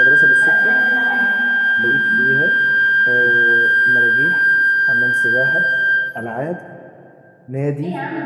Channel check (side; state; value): both; identical; correlation 1.00